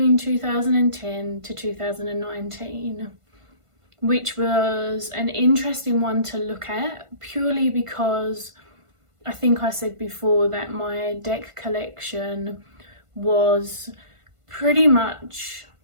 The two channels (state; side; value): late; left; 1.5 ms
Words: 2010 to 2019, which was an interesting one to look at purely because I think I said before that my deck collection was pretty much,